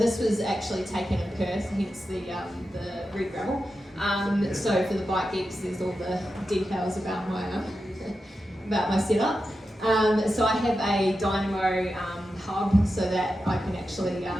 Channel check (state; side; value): normal; both; correlation 0.90